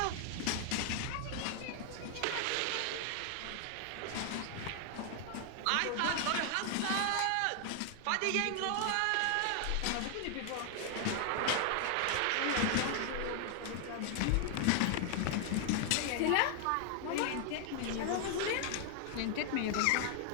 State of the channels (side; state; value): both; different; correlation 0.00